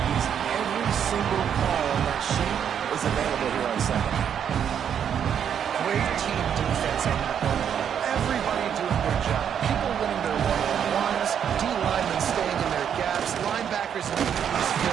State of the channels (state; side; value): quieter; left; 8.5 dB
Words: easy. Every single call on that sheet is available here on 2nd. Great team defense on that one. Everybody doing their job. People winning their one-on-ones, D-linemen staying in their gaps, linebackers in the defense